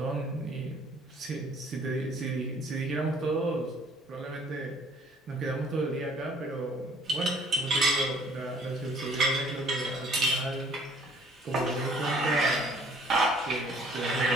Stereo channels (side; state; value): both; normal; correlation 0.58